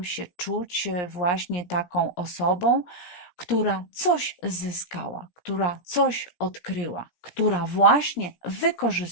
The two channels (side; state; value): right; late; 17 ms